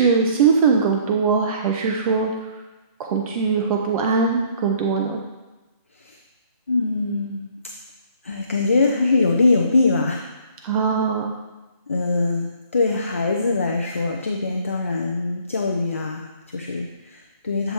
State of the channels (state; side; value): inverted; both; correlation -0.58